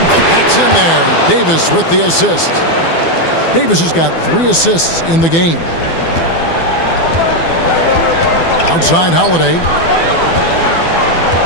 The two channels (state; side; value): late; right; 12 ms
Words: That's in there. Davis with the assist. Davis has got 3 assists in the game. Outside Holiday.